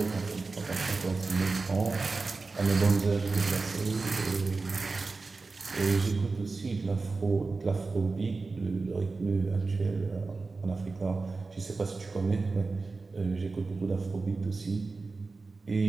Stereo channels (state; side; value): quieter; left; 3.9 dB